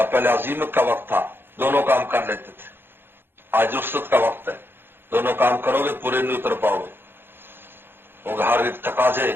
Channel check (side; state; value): left; late; 0.10 ms